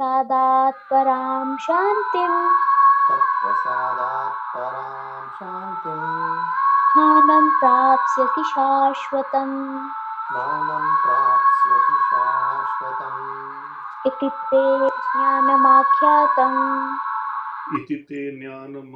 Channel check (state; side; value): identical; both; correlation 1.00